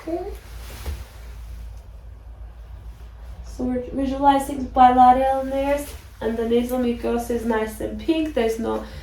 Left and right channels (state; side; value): identical; both; correlation 1.00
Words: So we're visualizing bilateral nares, and the nasal mucosa is nice and pink. There's no